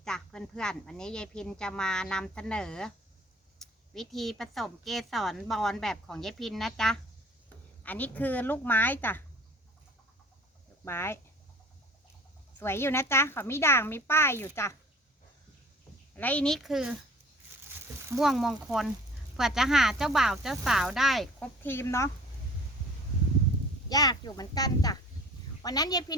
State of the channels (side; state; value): both; normal; correlation 0.48